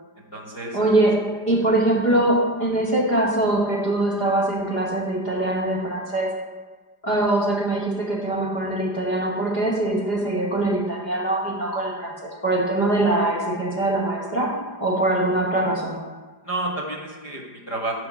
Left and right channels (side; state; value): right; late; 4.9 ms